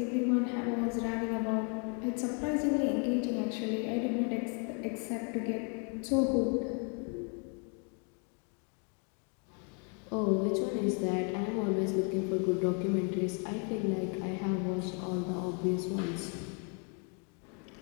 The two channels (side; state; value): right; quieter; 39.0 dB